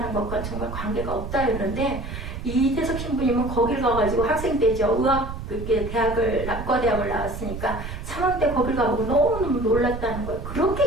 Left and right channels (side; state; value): right; noise; rumble, 7 dB below the sound